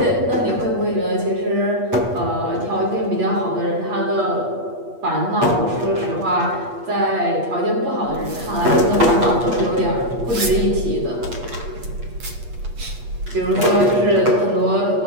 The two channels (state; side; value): late; left; 8.4 ms